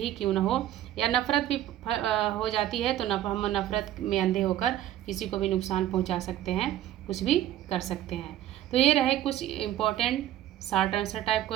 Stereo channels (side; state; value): left; quieter; 12.7 dB